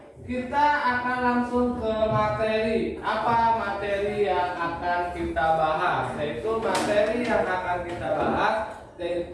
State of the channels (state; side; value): identical; both; correlation 1.00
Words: kita akan langsung ke materi. Apa materi yang akan kita bahas? Yaitu materi yang akan kita bahas